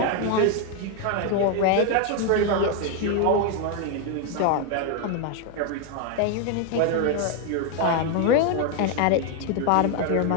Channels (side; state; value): both; different; correlation 0.01